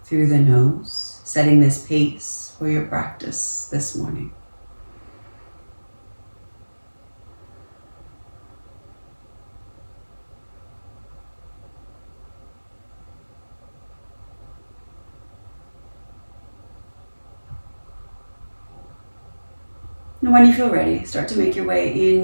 through the nose, setting this pace for your practice this morning. And when you feel ready, start to make your way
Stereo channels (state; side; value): inverted; both; correlation -1.00